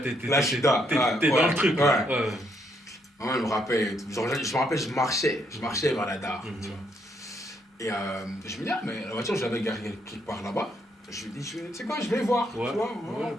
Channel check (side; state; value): both; normal; correlation 0.73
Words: suis DAR. T'es dans le truc. Ouais. Maman, elle me rappelle et tout. Je me rappelle, je marchais vers la DAR. Tu vois. Et je me dis, mais la voiture, je l'avais garée quelque part là-bas. Je lui dis, tu sais quoi, je vais voir. Tu vois,